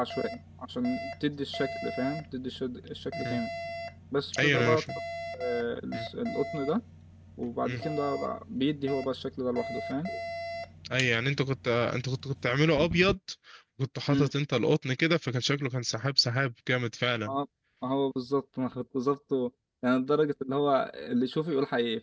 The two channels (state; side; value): identical; both; correlation 1.00